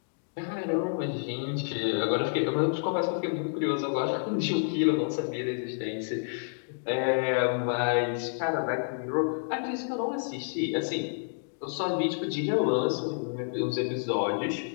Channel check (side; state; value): right; silent; digital silence